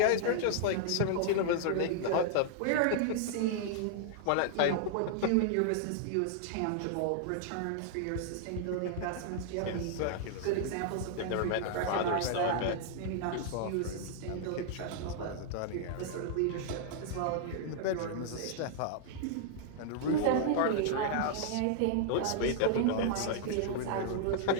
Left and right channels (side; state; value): both; different; correlation -0.01